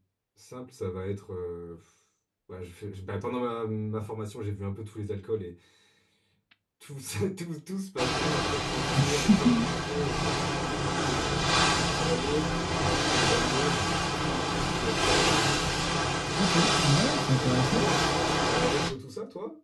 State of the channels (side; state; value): both; identical; correlation 1.00